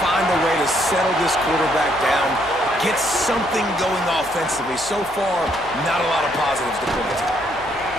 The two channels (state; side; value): noise; left; hum, 22 dB below the sound